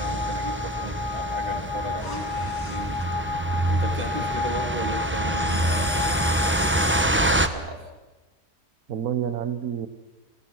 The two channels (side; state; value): both; normal; correlation 0.31